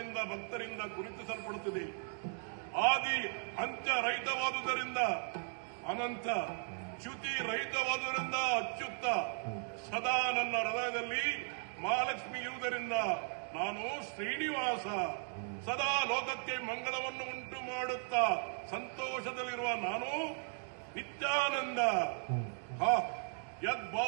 ಭಕ್ತರಿಂದ ಗುರುತಿಸಲ್ಪಡುತ್ತದೆ. ಆದಿ ಅಂತ್ಯ ರಹಿತವಾದುದರಿಂದ ಅನಂತ, ಚ್ಯುತಿ ರಹಿತವಾದುದರಿಂದ ಅಚ್ಯುತ, ಸದಾ ನನ್ನ ಹೃದಯದಲ್ಲಿ ಮಹಾಲಕ್ಷ್ಮಿ ಇರುವುದರಿಂದ ನಾನು ಶ್ರೀನಿವಾಸ. ಸದಾ ಲೋಕಕ್ಕೆ ಮಂಗಳವನ್ನು ಉಂಟು ಮಾಡುತ್ತಾ ಸಂತೋಷದಲ್ಲಿರುವ ನಾನು ನಿತ್ಯಾನಂದ.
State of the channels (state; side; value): silent; left; 53 dB below the other